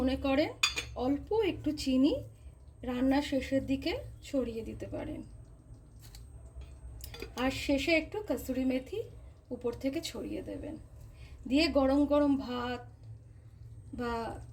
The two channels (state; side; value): identical; both; correlation 1.00